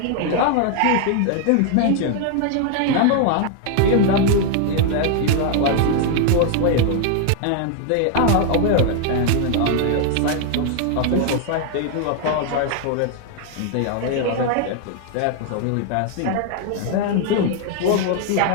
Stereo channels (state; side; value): different; both; correlation 0.00